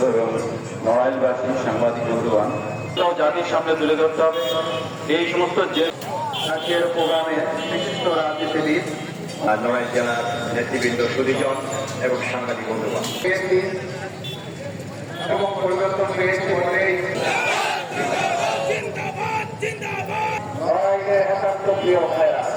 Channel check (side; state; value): both; identical; correlation 1.00